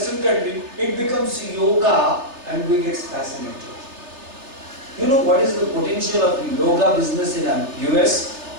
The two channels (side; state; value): left; late; 3.3 ms